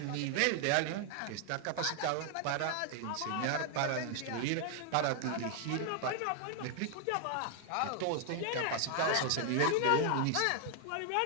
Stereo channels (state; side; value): different; both; correlation 0.00